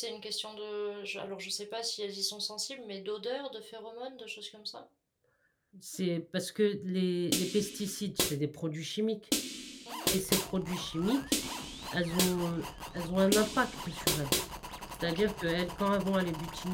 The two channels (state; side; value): identical; both; correlation 1.00